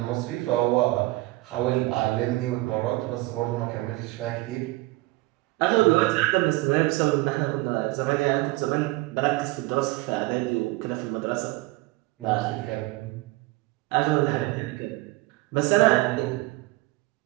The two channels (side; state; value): left; quieter; 21.1 dB